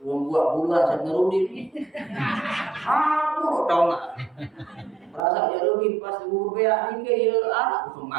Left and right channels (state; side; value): drops out; left; at 5.2 s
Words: buat buluan saya ngerudin. Aku tahu nggak? Merasa jadi pas beak ini ya anak